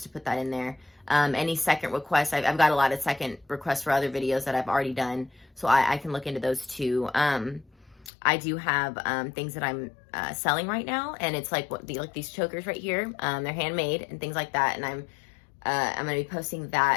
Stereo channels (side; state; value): right; drops out; at 8.1 s